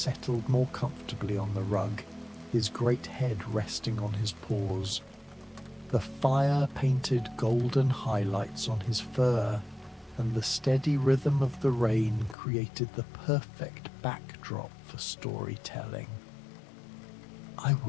more comfortably on the rug, his great head resting on his paws. The fire painted golden highlights on his fur, and the steady rhythm of the rain created the perfect backdrop for storytelling. "I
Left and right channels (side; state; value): right; drops out; at 12.4 s